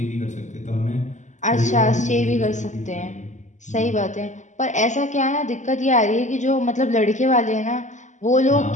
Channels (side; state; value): right; late; 0.35 ms